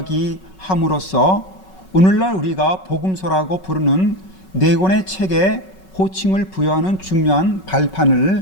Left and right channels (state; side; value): late; right; 5.3 ms